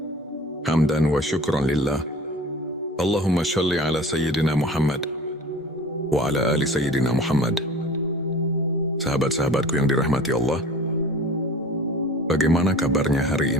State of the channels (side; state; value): both; normal; correlation 0.42